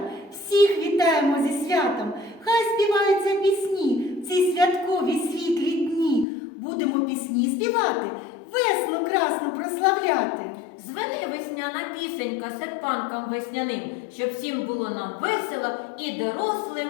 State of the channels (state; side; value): drops out; right; at 6.2 s